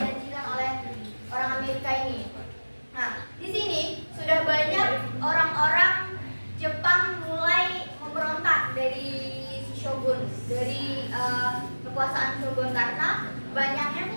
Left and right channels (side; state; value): both; inverted; correlation -1.00